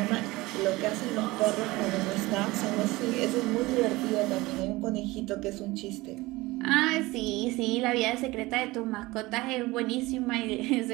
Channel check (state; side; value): quieter; left; 20.5 dB